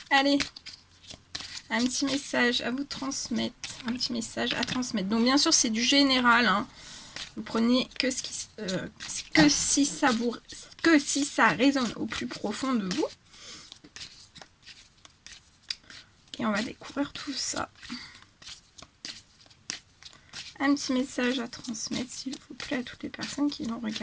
Allez, un petit message à vous transmettre, un petit message à transmettre. Donc bien sûr c'est du général, hein. Vous prenez que si ça résonne au plus profond de vous. Et on va découvrir tout ça. Un petit message à transmettre, s'il vous plaît, à toutes les personnes qui vont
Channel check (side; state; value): both; identical; correlation 1.00